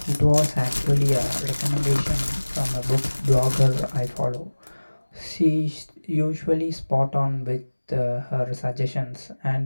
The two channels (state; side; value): inverted; both; correlation -1.00